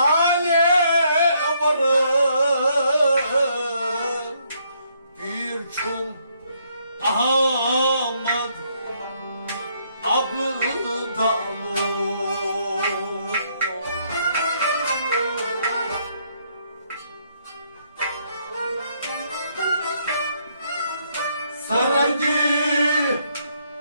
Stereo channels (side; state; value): both; inverted; correlation -0.71